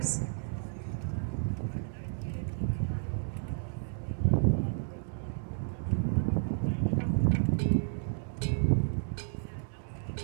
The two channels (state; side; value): silent; left; digital silence